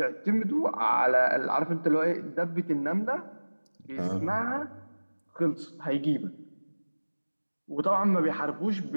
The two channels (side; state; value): both; inverted; correlation -1.00